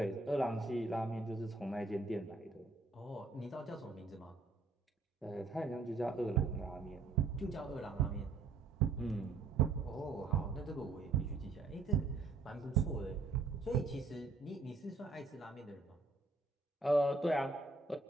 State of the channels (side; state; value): left; quieter; 3.7 dB